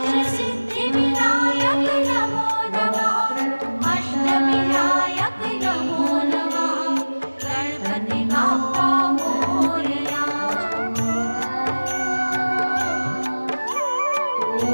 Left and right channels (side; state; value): both; inverted; correlation -1.00